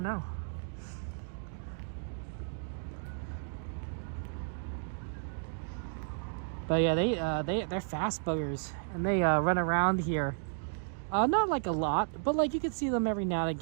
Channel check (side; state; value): left; silent; digital silence